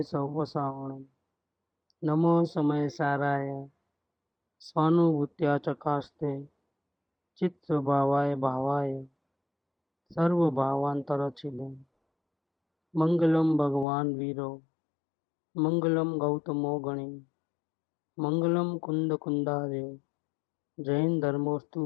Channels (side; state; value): right; drops out; at 13.9 s